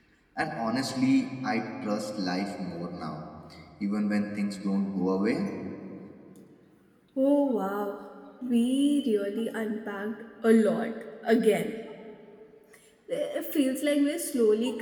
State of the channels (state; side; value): identical; both; correlation 1.00